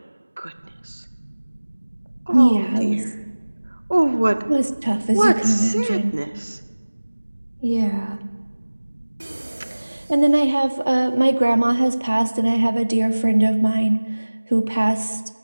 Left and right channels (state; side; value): inverted; both; correlation -1.00